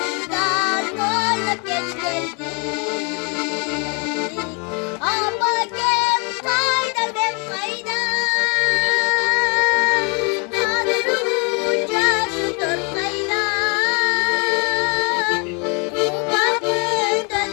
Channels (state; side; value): quieter; right; 34.0 dB